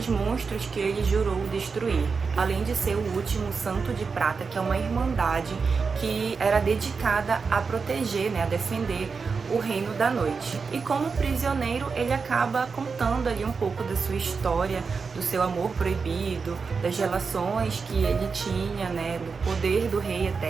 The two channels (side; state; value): left; quieter; 5.1 dB